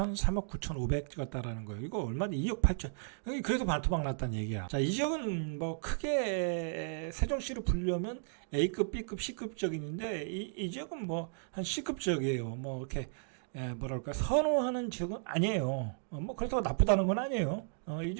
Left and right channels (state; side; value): silent; left; digital silence